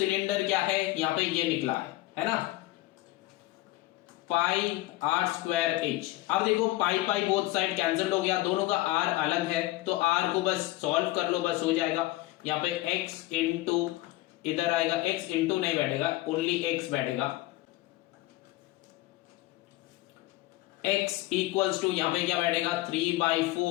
क्या है, यहां पे ये निकला है ना, πr²h। अब देखो पाई बोथ साइड कैंसिल हो गया, दोनों का r अलग है, तो r को बस सॉल्व कर लो, बस हो जाएगा। यहाँ पे x इंटू इधर आएगा, x इंटू नहीं बैठेगा, ओनली x बैठेगा, x इक्वल्स टू यहाँ पे क्या बैठेगा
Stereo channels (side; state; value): right; quieter; 18.3 dB